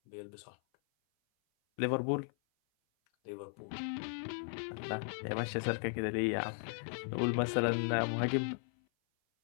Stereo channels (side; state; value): right; silent; 53 dB below the other